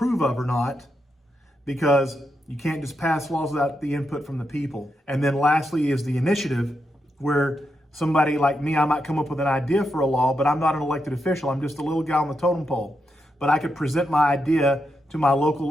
of or not, because you can't just pass laws without the input from the people. And then lastly is the initiative, where somebody like me, I might come up with an idea for a law, but I'm not an elected official. I'm just a little guy on the totem pole. But I could present my idea to my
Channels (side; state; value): both; normal; correlation 0.84